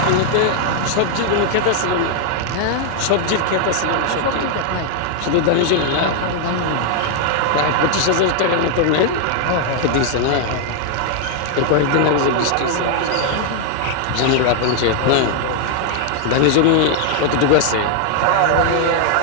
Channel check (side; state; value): both; different; correlation 0.00